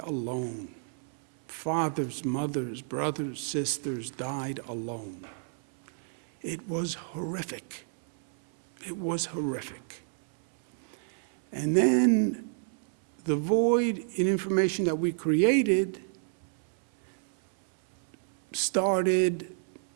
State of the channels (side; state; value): left; silent; 58 dB below the other